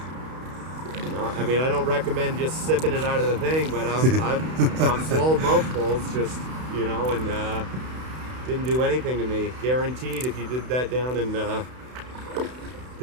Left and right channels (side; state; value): left; late; 32 ms